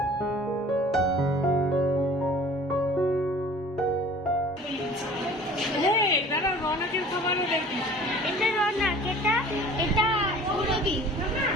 রনকের খাবারও দেখি। এটা রনক, এটা ঔরবি।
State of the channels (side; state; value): both; normal; correlation 0.47